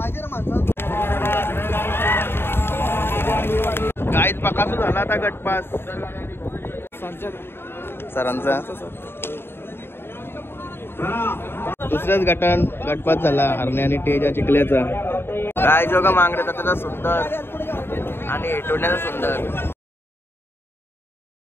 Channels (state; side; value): late; right; 0.11 ms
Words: गाईत बकासूर झाला आता गटपास सरांचा दुसऱ्याच गटपास झाला हरणे आणि टेजा चिखल्याचा गाय जोगा मांगरे त्याचा सुंदर आणि टोण्याचा सुंदर.